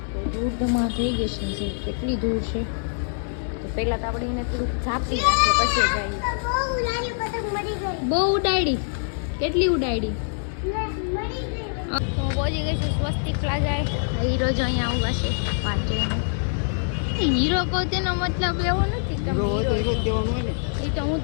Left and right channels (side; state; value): right; silent; digital silence